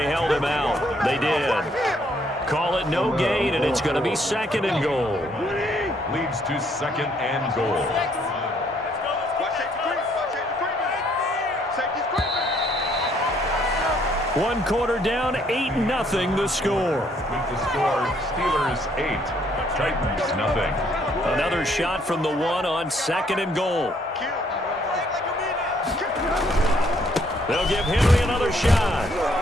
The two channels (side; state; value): both; normal; correlation 0.67